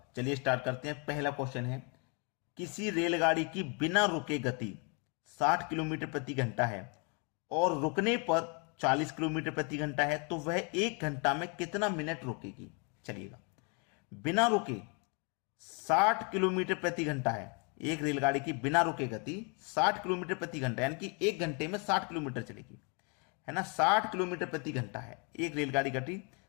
चलिए स्टार्ट करते हैं। पहला क्वेश्चन है, किसी रेलगाड़ी की बिना रुके गति 60 किलोमीटर प्रति घंटा है और रुकने पर 40 किलोमीटर प्रति घंटा है, तो वह 1 घंटा में कितना मिनट रुकेगी। चलिएगा, बिना रुके 60 किलोमीटर प्रति घंटा है। एक रेलगाड़ी की बिना रुके गति 60 किलोमीटर प्रति घंटा, यानी कि 1 घंटे में 60 किलोमीटर चलेगी, है ना। 60 किलोमीटर प्रति घंटा है एक रेलगाड़ी गति,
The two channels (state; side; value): quieter; right; 35.1 dB